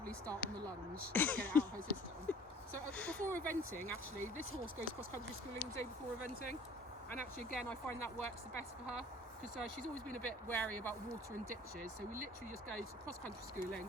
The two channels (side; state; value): both; normal; correlation 0.50